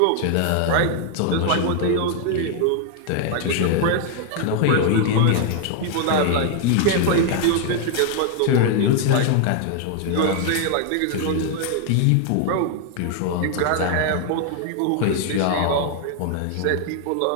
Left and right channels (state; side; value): different; both; correlation 0.00